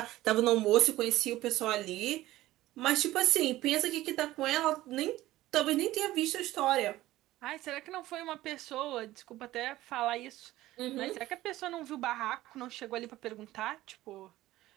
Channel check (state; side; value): quieter; left; 16.2 dB